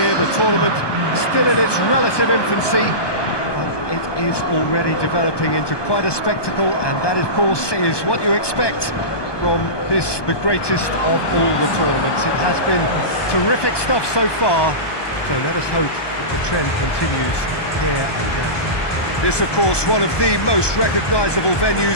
The tournament still in its relative infancy, but it is already developing into quite a spectacle, and that, of course, is what you expect from this, the greatest of all the tournaments. It has been terrific stuff so far, so let us hope that the trend continues here and now. This, of course, one of the most recognisable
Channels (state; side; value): late; right; 1.2 ms